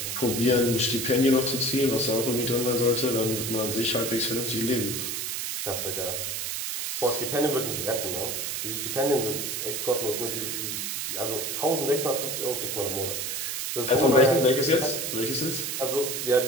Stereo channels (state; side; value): noise; right; hiss, 3 dB below the sound